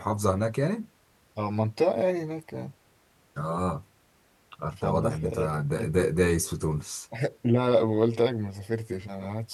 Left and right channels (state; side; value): identical; both; correlation 1.00